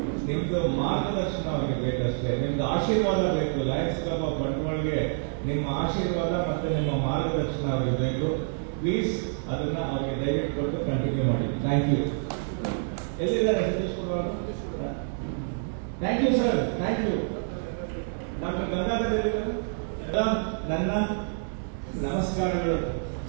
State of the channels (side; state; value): left; silent; digital silence